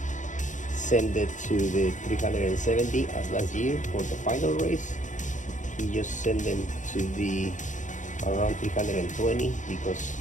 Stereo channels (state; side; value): late; right; 0.36 ms